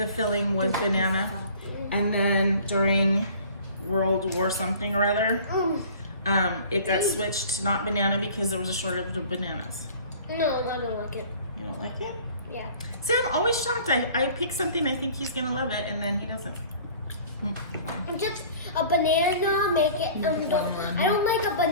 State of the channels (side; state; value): both; inverted; correlation -0.47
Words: filling was banana? And then during World War something or other, it got switched to not banana because there was a shortage of bananas. No, I don't like it. You don't like it? Yeah. See, I'm always shocked. I pick something, I think he's gonna love it, and then he doesn't. Just a banana, make it. I don't like a